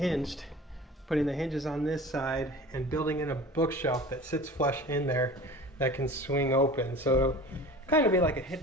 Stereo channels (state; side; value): normal; both; correlation 0.40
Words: putting the hinges on this side and building in a bookshelf that sits flush in there that can swing open. So it'll kind of be like a